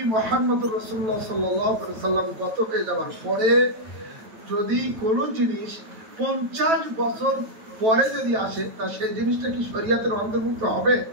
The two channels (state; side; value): late; left; 9.1 ms